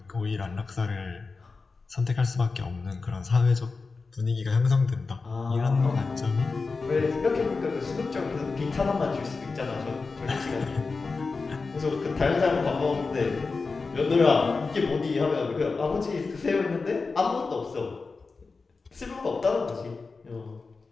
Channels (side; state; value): right; quieter; 4.2 dB